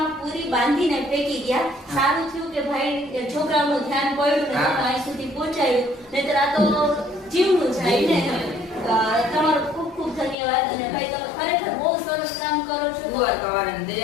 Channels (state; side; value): drops out; right; at 10.4 s